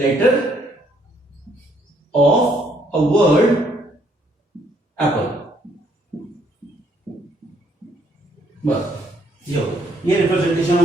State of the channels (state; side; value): normal; both; correlation 0.69